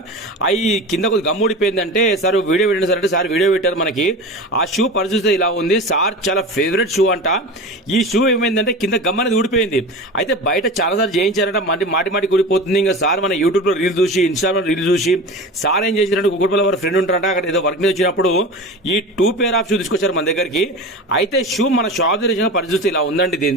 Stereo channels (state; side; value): normal; both; correlation 0.30